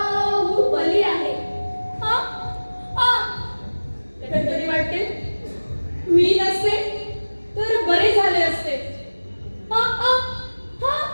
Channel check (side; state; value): both; inverted; correlation -1.00